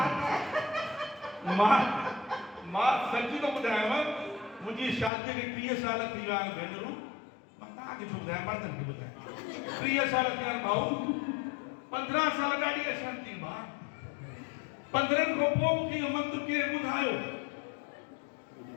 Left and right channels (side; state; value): right; drops out; at 5.1 s